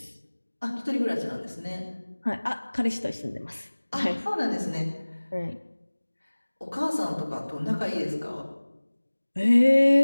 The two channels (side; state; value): both; inverted; correlation -1.00